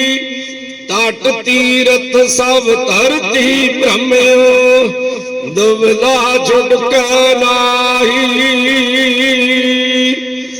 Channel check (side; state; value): both; identical; correlation 1.00